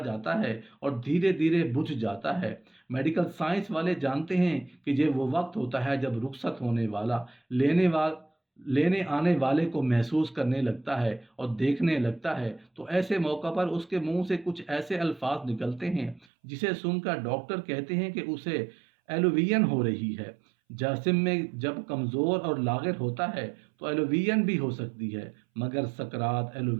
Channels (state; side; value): drops out; left; at 16.2 s